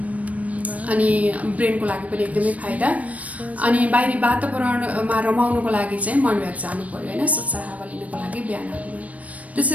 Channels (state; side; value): late; left; 0.068 ms